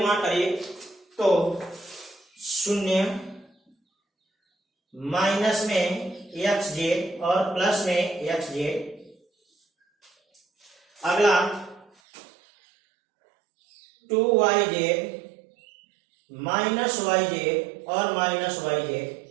गुणा करिए, तो 0 माइनस में एक्स जेड और प्लस में एक्स जेड। अगला 2yz माइनस वाई जेड और माइनस वाई जेड।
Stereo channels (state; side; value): drops out; left; at 11.9 s